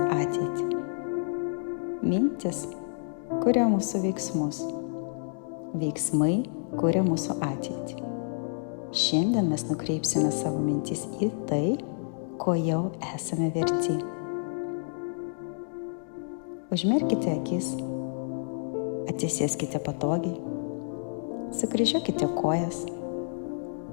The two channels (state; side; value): silent; right; digital silence